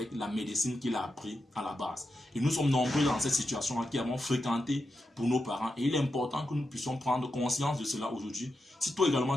la médecine qu'il a appris à la base. Et nous sommes nombreux dans cette situation-là qui avons fréquenté pour nos parents. Et il est important que nous puissions prendre conscience de cela aujourd'hui. Si toi également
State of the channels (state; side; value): normal; both; correlation 0.88